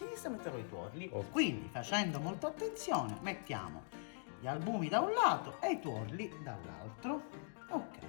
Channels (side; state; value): right; silent; digital silence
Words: metterò i tuorli. Ok. Quindi, facendo molta attenzione, mettiamo gli albumi da un lato e i tuorli dall'altro.